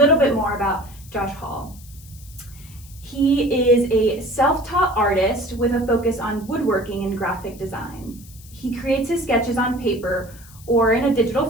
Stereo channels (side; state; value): left; noise; hiss, 22 dB below the sound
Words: bit more about Josh Hall. He is a self-taught artist with a focus on woodworking and graphic design. He creates his sketches on paper or in a